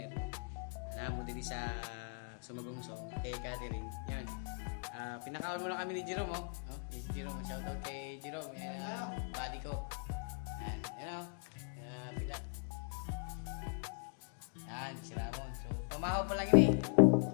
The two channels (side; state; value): right; silent; 51 dB below the other